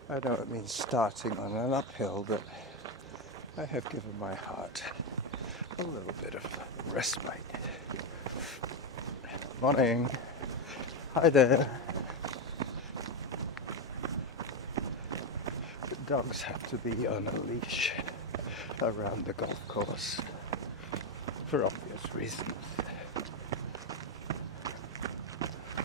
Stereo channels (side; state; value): both; normal; correlation 0.09